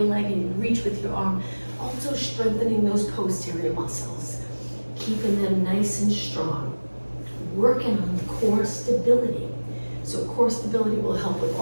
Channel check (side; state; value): both; inverted; correlation -1.00